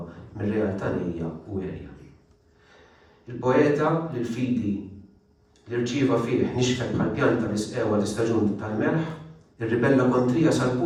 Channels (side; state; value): both; identical; correlation 1.00